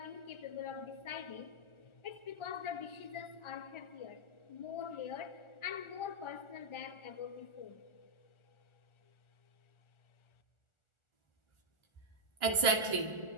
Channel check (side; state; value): right; late; 1.4 ms